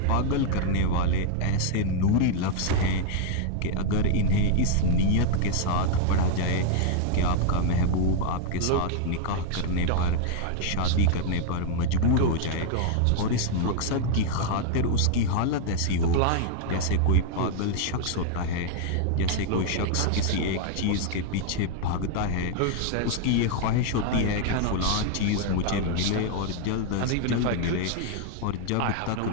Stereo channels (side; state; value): both; different; correlation 0.00